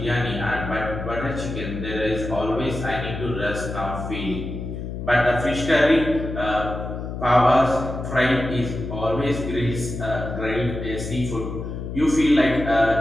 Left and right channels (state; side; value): noise; left; hum, 7 dB below the sound